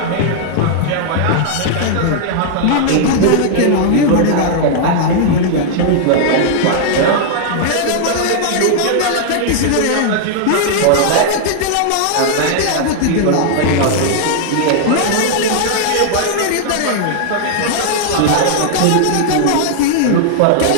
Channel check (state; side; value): different; both; correlation -0.01